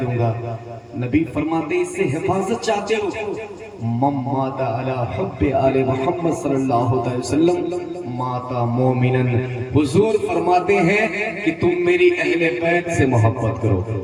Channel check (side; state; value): both; identical; correlation 1.00